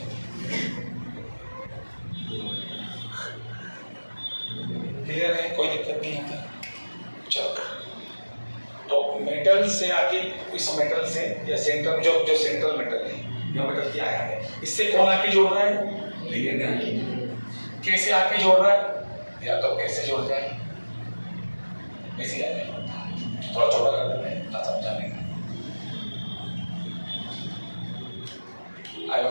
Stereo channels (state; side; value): inverted; both; correlation -1.00